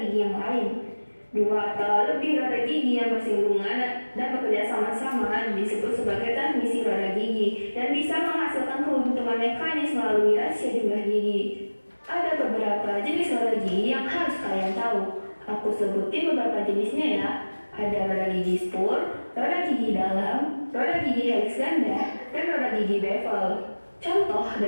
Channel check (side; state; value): both; inverted; correlation -1.00